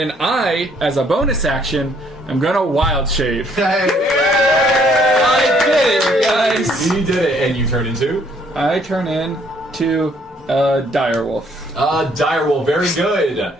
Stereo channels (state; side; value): normal; both; correlation 0.65